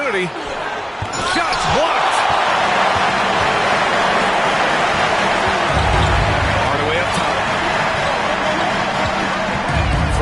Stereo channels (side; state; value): both; identical; correlation 1.00